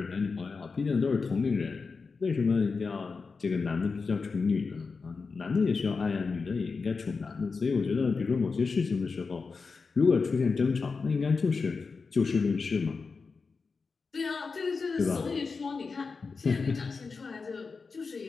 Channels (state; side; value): quieter; right; 4.7 dB